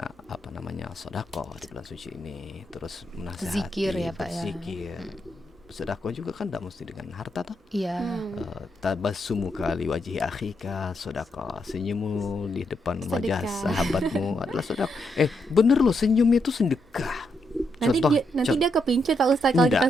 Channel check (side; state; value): both; normal; correlation 0.80